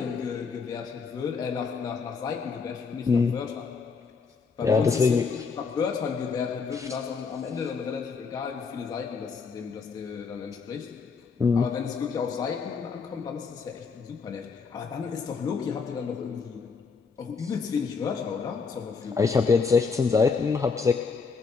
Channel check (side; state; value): right; quieter; 5.2 dB